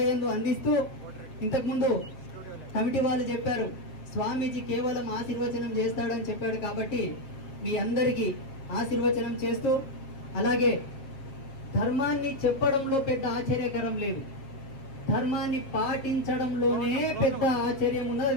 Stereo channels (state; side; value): late; right; 7.4 ms